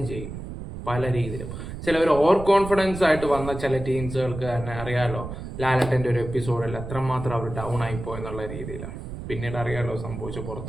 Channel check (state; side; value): noise; right; rumble, 9 dB below the sound